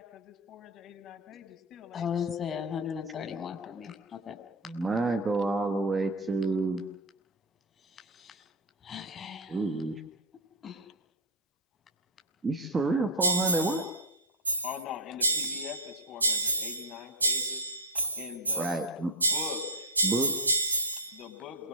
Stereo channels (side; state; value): both; normal; correlation 0.03